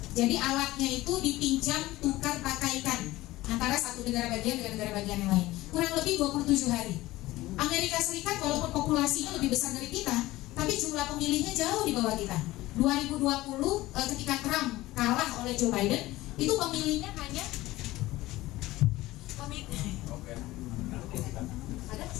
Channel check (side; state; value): right; quieter; 17.8 dB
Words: Jadi alatnya itu dipinjam, tukar, pakaikan antara satu negara bagian dengan negara bagian yang lain. Kurang lebih 27 hari. Amerika Serikat walaupun populasinya lebih besar dari kita, tapi jumlah pemilihnya jauh di bawah kita. 2020 ketika Trump kalah oleh Joe Biden, itu pemilihnya hanya